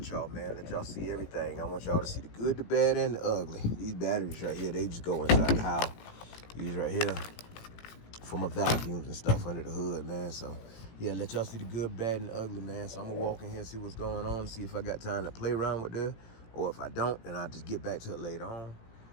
y'all, man. Let y'all see everything. I want y'all to see the good, the bad, and the ugly. These batteries right here, they just go inside the house. These right here for my vacuums and stuff under the hood, man. So yeah, let y'all see the good, bad, and the ugly, man. So I'm gonna walk in here and see what's going on, see if I got time to play around with this, or if I don't, then I'll just get back to it later on.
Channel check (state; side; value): late; right; 17 ms